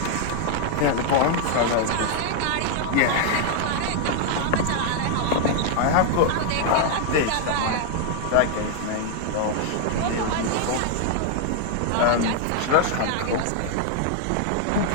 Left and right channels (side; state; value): both; different; correlation 0.00